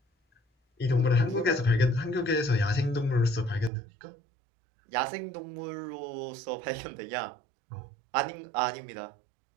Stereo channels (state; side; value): drops out; left; at 3.7 s